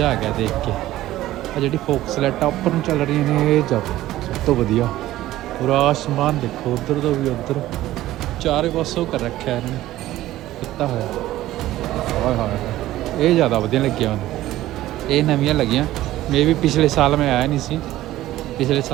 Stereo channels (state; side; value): quieter; left; 15.1 dB